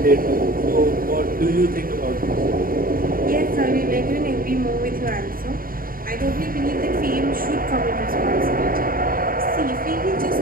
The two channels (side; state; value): left; late; 0.41 ms